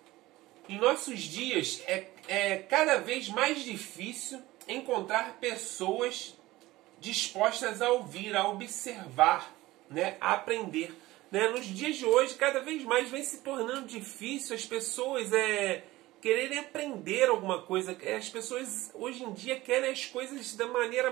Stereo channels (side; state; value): left; quieter; 18.1 dB